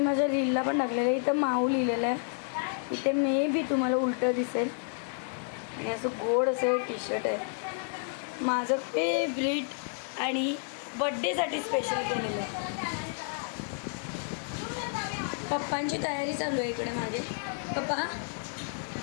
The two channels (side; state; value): right; silent; 57 dB below the other